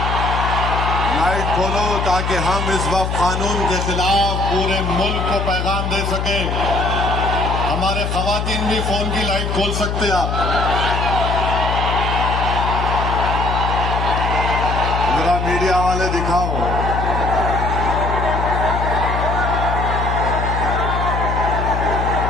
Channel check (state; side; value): noise; left; hum, 2 dB below the sound